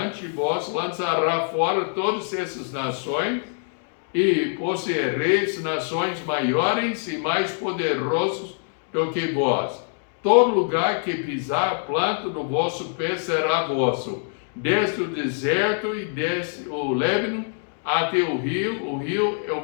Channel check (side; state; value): right; silent; 62 dB below the other